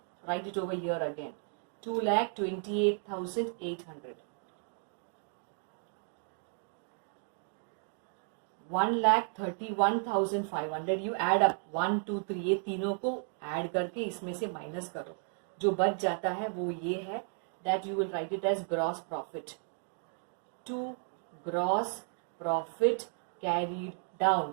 write it over here again. 2,28,800. 1,31,500. You add up 1, 2, 3, ये तीनों को ऐड करके इसमें से माइनस करो. जो बच जाता है वो ये है, that you will write it as gross profit, to gross profit carried down,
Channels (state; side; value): silent; left; 55 dB below the other